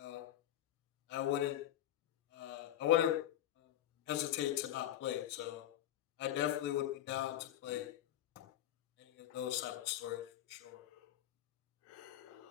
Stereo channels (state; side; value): quieter; right; 12.5 dB